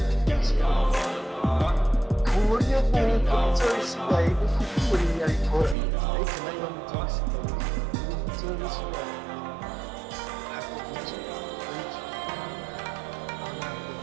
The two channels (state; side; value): drops out; left; at 5.8 s